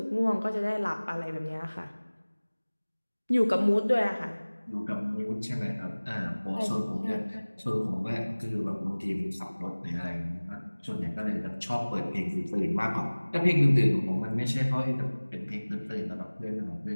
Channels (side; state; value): both; inverted; correlation -1.00